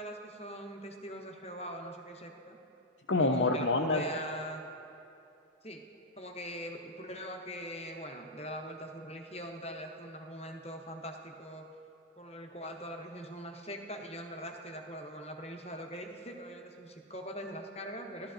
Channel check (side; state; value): both; normal; correlation -0.03